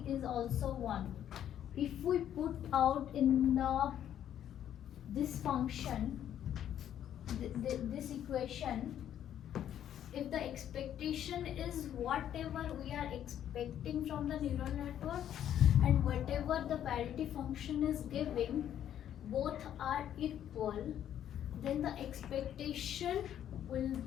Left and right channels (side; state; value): right; quieter; 10.4 dB